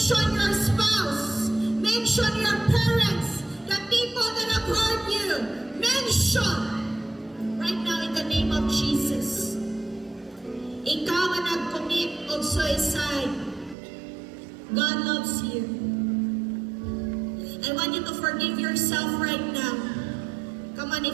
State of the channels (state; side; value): drops out; left; at 13.8 s